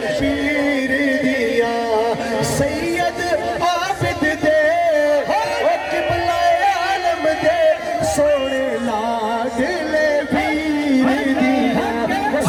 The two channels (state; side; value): identical; both; correlation 1.00